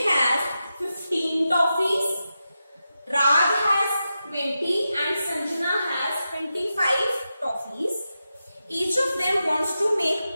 has 15 toffees, Raj has 20 and Sanjana has 25 toffees. Each of them wants to make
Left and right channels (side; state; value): both; inverted; correlation -0.90